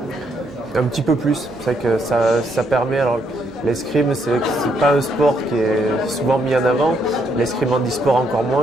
Un petit peu plus. C'est vrai que ça permet. Alors, l'escrime, c'est pas un sport qui est souvent mis en avant. L'escrime en e-sport encore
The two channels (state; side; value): noise; right; hum, 28 dB below the sound